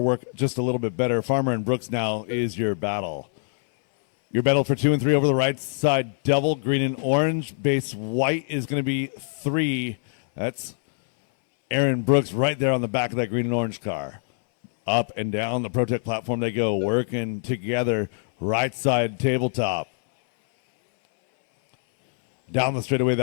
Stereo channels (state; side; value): silent; right; 63 dB below the other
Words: just a little bit better. Farmer and Brooks now is your battle. Your battle for 2 and 3 over the right side, double, green and orange. Base white is going to be 3. That's Aaron Brooks right there on the back of that green and orange car. Up and down the Protect platform they go, working together, right side tabletop. Down the straightaway,